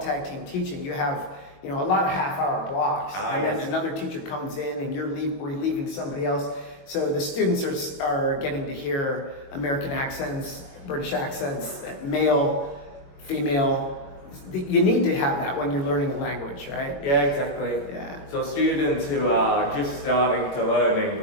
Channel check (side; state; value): right; late; 22 ms